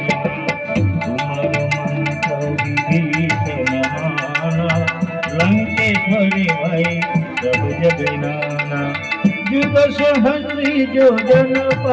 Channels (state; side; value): identical; both; correlation 1.00